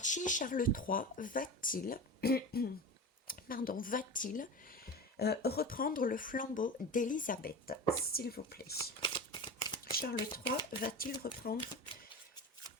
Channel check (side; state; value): both; normal; correlation 0.28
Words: Charles III va-t-il reprendre le flambeau d'Élisabeth, s'il vous plaît? Charles III va-t-il reprendre